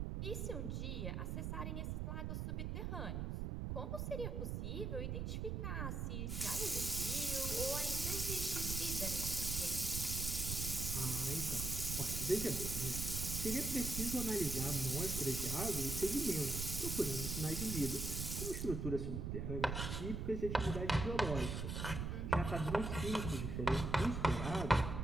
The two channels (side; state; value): right; noise; rumble, 2 dB below the sound